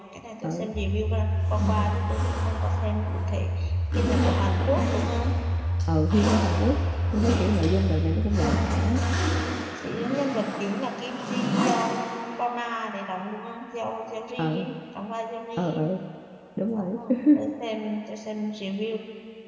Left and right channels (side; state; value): both; identical; correlation 1.00